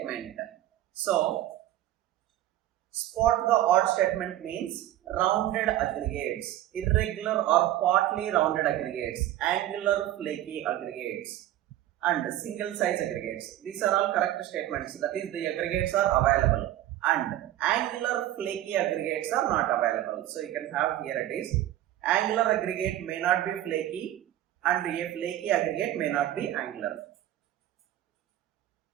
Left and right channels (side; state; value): left; quieter; 13.5 dB